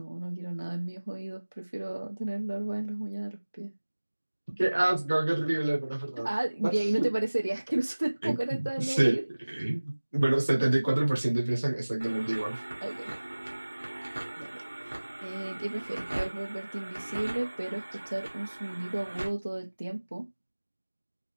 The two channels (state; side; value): inverted; both; correlation -1.00